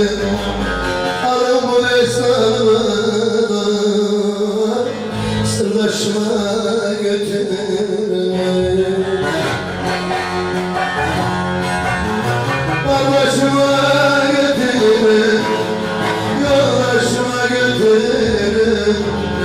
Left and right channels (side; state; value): both; identical; correlation 1.00